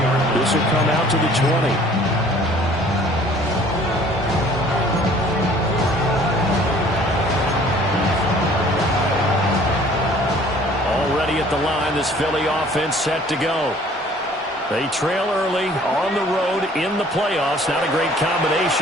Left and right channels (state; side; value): normal; both; correlation 0.54